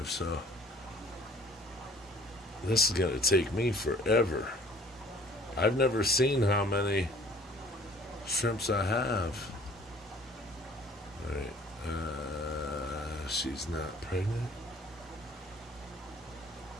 So this is going to take me forever. I've never seen how many shrimps I have. All right. She's not pregnant.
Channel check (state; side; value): normal; both; correlation 0.53